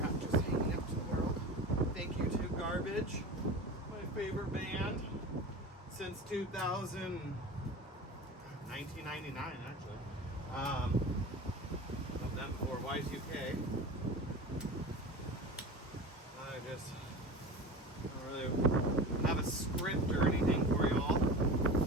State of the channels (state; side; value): normal; both; correlation 0.32